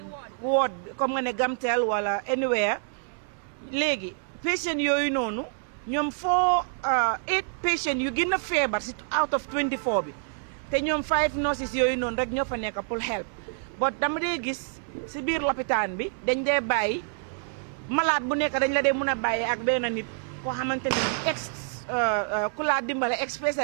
ward ward comme nga ne Gamtel wala anywhere léegi patient yooyu noonu ñoom 8 patient yu gën a feebar si out of 24 bi te ñoom 5 nurses yooyu noonu rek ñoo fa nekk pour help but dama dee gis si biir lopitaan bi dañ dee bàyyi malade bu nekk dañ la dee mën a bàyyi ak benn nit koo xamante ne ku laa dimbale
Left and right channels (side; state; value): left; silent; digital silence